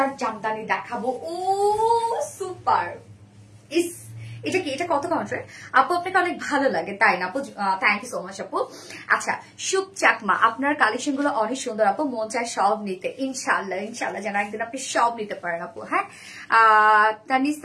জামদানি দেখাবো, ও সুপার। ইস, এটা কি? এটা কত কাউন্টার আপু? আপনাকে অনেক ভালো লাগে তাই না আপু? থ্যাংক ইউ সো মাচ আপু। আচ্ছা, শুভ চাকমা, আপনার কালেকশন গুলো অনেক সুন্দর আপু, মন চায় সব নিতে। ইনশাল্লাহ ইনশাল্লাহ যেন একদিন আপনি সব নিতে পারেন আপু। হ্যাঁ,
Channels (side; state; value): both; identical; correlation 1.00